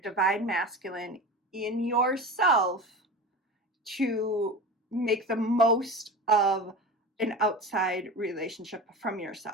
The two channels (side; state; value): both; normal; correlation 0.31